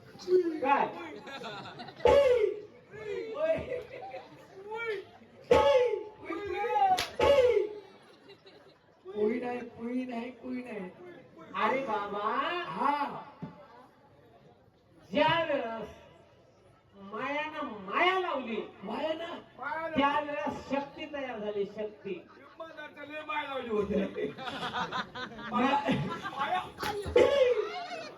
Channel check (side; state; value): both; identical; correlation 1.00